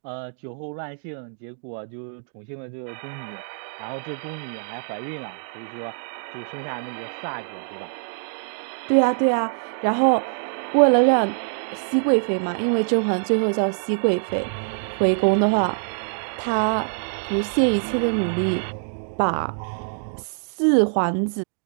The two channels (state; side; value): silent; left; digital silence